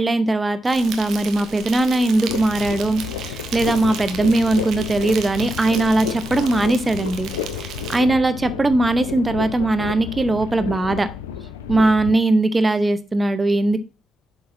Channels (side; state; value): both; normal; correlation 0.88